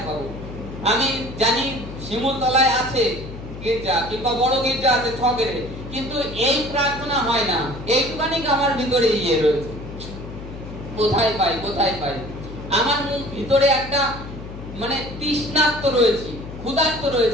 পাবো। আমি জানি শিমুলতলায় আছে গির্জা, কিংবা বড় গির্জা আছে ছগেরে, কিন্তু এই প্রার্থনা হয় না। এইটুখানি আমার ভিতরে ইয়ে রয়েছে, কোথায় পাই কোথায় পাই। আমার ভিতরে একটা মানে তৃষ্ণার্ত রয়েছে, ক্ষুধার্ত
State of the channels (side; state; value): left; noise; hum, 12 dB below the sound